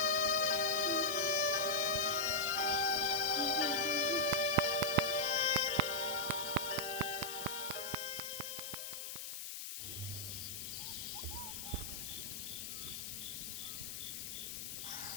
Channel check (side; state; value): left; noise; hiss, 7 dB below the sound